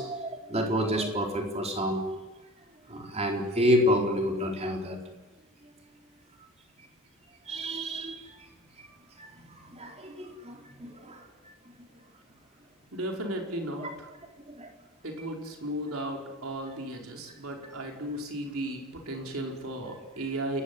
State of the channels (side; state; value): both; normal; correlation 0.40